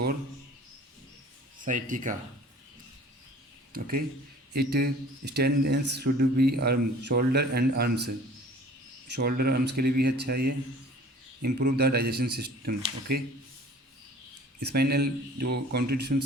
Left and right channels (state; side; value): normal; both; correlation 0.48